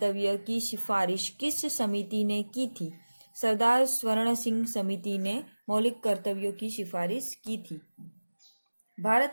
की सिफारिश किस समिति ने की थी? सरदार स्वर्ण सिंह समिति ने मौलिक कर्तव्यों की सिफारिश की थी।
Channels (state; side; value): inverted; both; correlation -1.00